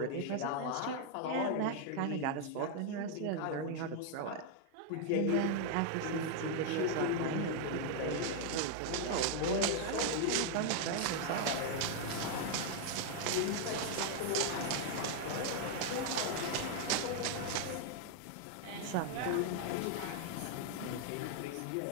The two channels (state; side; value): different; both; correlation 0.00